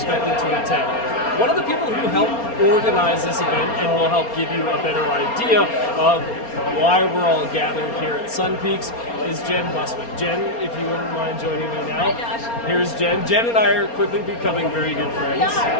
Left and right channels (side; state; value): right; late; 4.3 ms